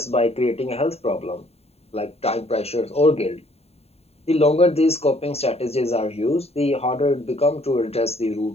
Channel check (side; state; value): right; late; 0.30 ms